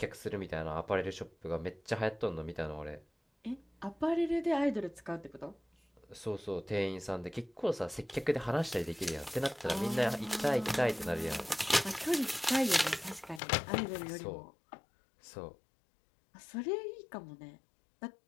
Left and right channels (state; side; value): drops out; right; at 13.4 s